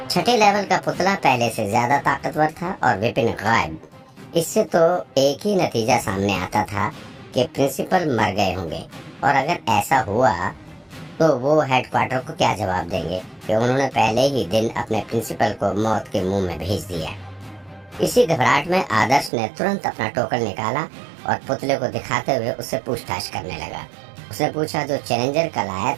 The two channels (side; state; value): left; drops out; at 19.3 s